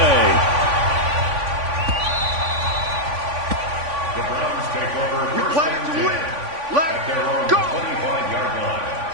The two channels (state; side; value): late; left; 3.5 ms